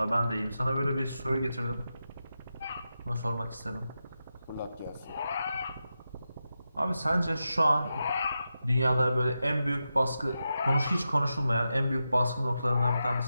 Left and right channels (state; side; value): inverted; both; correlation -0.89